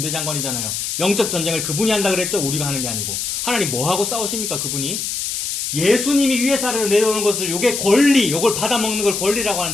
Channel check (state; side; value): noise; left; hiss, 3 dB below the sound